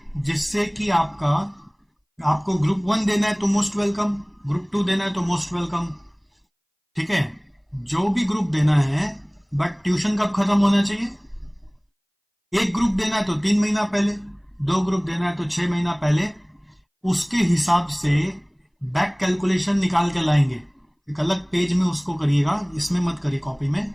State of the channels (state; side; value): identical; both; correlation 1.00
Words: जिससे कि आपको ग्रुप 1 देना है तो मोस्ट वेलकम, ग्रुप 2 देना है तो मोस्ट वेलकम, ठीक है, जो भी ग्रुप देना है। बट ट्यूशन कब खत्म होना चाहिए, एक ग्रुप देना है तो 3 महीना पहले, 2 ग्रुप देना है तो 6 महीना पहले। उसके हिसाब से बैक कैलकुलेशन निकाल के लाएंगे, एक अलग पेज में उसको करिएगा, इसमें मत करिए कॉपी में,